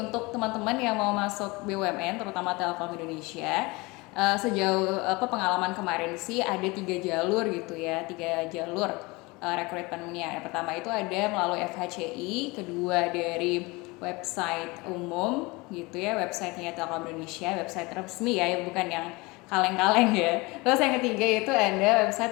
teman-teman yang mau masuk BUMN, terutama Telkom Indonesia, sejauh pengalaman kemarin sih ada 3 jalur gitu ya, 3 jalur rekrutmennya. Yang pertama itu ada melalui FHCI, kedua dari website umum gitu ya, websitenya Telkom Indonesia, website resmi ya, bukan yang kaleng-kaleng ya. Terus yang ketiga itu ada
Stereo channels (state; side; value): quieter; right; 24.4 dB